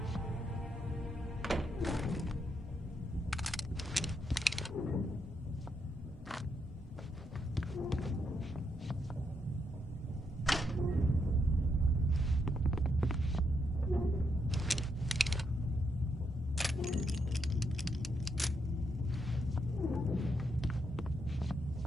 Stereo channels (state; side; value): normal; both; correlation 0.79